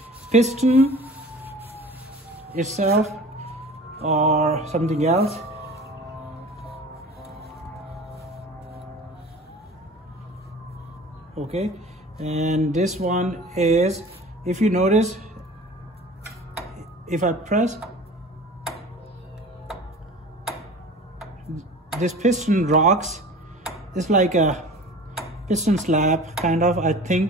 piston itself or something else. Okay, and this one is, if you notice, if I press, this piston rocks. It's like a piston slab kind of, I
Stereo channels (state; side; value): normal; both; correlation 0.41